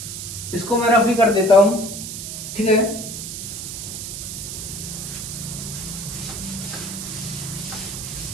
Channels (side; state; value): right; noise; hiss, 7 dB below the sound